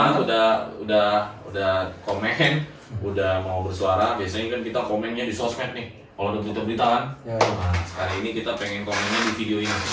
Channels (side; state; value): both; identical; correlation 1.00